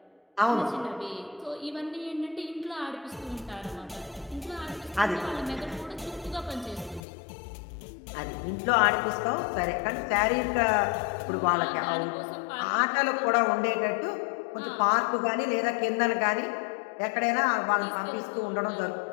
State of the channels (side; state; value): right; drops out; at 7.0 s